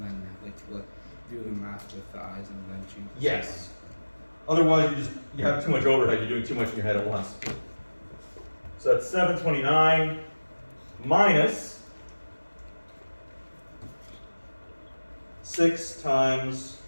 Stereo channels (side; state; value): both; inverted; correlation -1.00